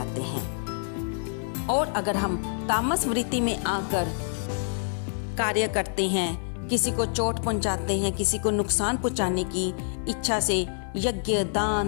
हैं। और अगर हम तामस वृत्ति में आकर कार्य करते हैं, किसी को चोट पहुंचाते हैं, किसी को नुकसान पहुंचाने की इच्छा से यज्ञ,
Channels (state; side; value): silent; right; 60 dB below the other